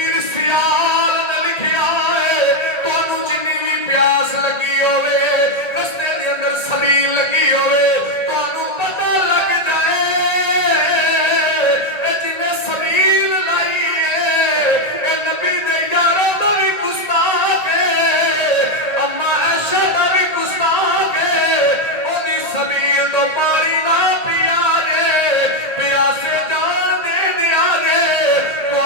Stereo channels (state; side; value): late; right; 1.8 ms